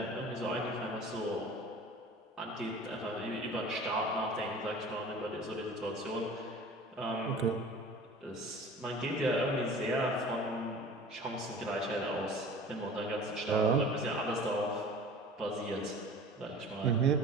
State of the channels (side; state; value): both; normal; correlation 0.42